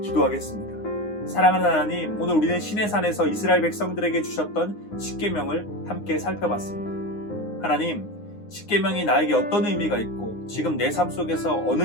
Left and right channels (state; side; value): late; right; 9.7 ms